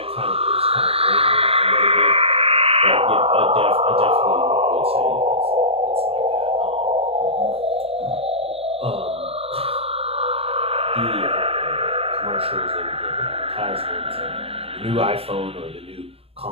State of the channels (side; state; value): left; late; 0.28 ms